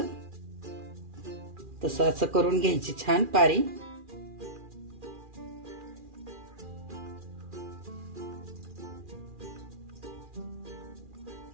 तसं असं करून घ्यायची छान पारी.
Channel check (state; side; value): late; left; 2.4 ms